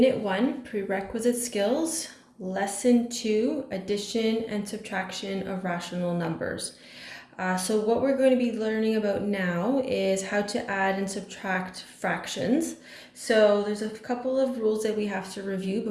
1, Prerequisite Skills, Lesson 2, Addition and Subtraction of Rational Numbers. So what we're going to be learning about now is how to add and subtract fractions. So there's a couple of rules that we have to review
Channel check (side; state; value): both; identical; correlation 1.00